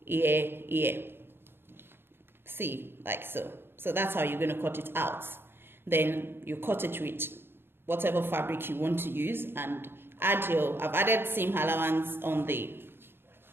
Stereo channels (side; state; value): left; late; 0.11 ms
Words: here, here. See, like so. So that's how you're going to cut it out. Then you cut it with whatever fabric you want to use, and add your, I've added seam allowance on this.